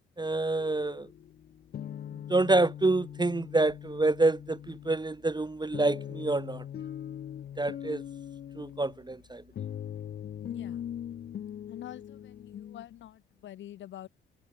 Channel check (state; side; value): normal; both; correlation 0.73